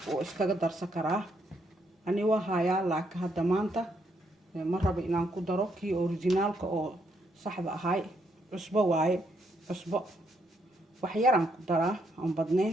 oo iskaga darsan karaa. ani waa hayaa laakiin hadda maanta ma rabo inaan ku daro kii originalka oo saxda ahay. cusbo waaye cusbo waxyaraan ku daraa aan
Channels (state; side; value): normal; both; correlation 0.75